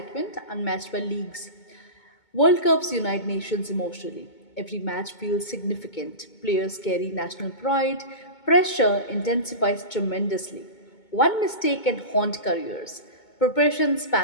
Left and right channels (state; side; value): late; right; 2.2 ms